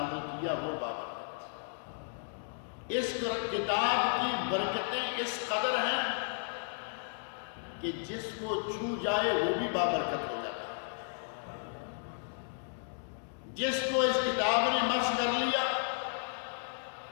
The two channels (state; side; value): silent; right; digital silence